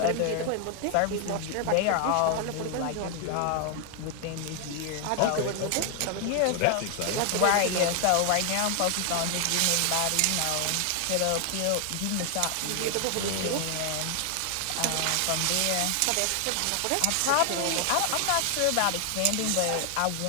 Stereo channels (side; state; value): both; different; correlation 0.00